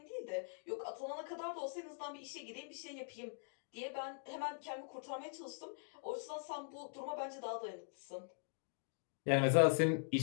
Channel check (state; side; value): silent; right; digital silence